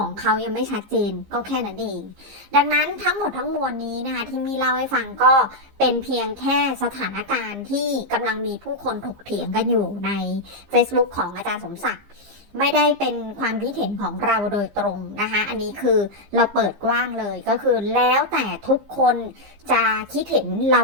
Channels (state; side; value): late; left; 15 ms